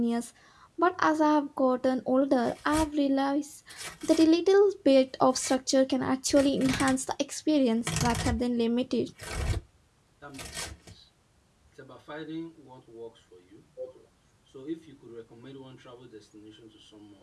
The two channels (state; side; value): identical; both; correlation 1.00